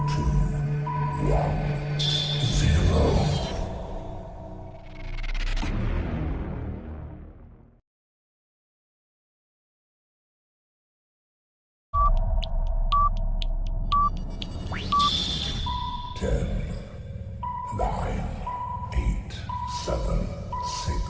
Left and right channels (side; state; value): both; identical; correlation 1.00